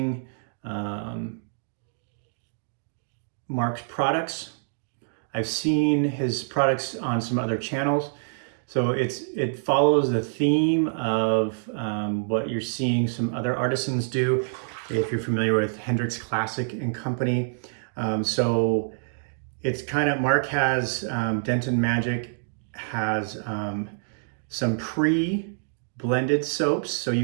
Mark's products. I've seen his products on some other channels. So it follows the theme of what you're seeing some other artisans do, if you're familiar with Hendrix Classic and Company. So it's kind of, Mark has, Denton Majik has some pre-blended soaps, so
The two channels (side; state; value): left; silent; digital silence